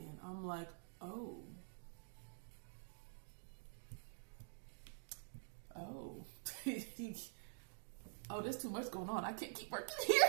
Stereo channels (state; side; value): silent; left; digital silence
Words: I'm like, oh, oh, there's too much going on. I can't keep working here.